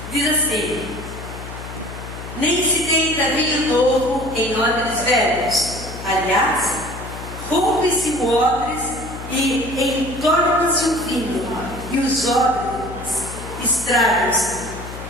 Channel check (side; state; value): left; noise; hum, 11 dB below the sound